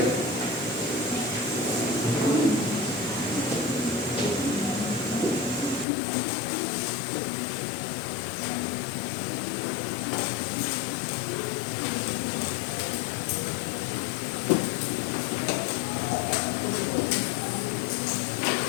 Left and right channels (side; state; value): right; drops out; at 5.9 s